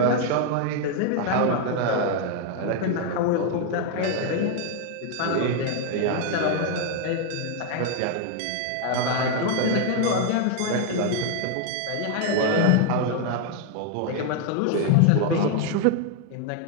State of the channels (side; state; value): both; different; correlation 0.00